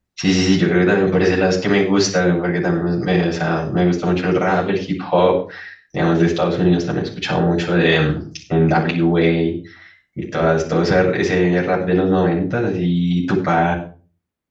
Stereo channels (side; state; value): both; identical; correlation 1.00